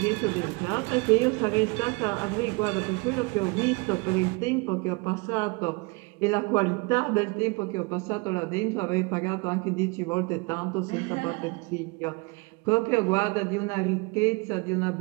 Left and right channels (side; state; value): left; quieter; 29.0 dB